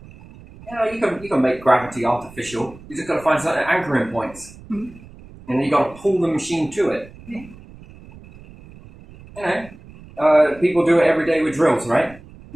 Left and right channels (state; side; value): noise; right; rumble, 20 dB below the sound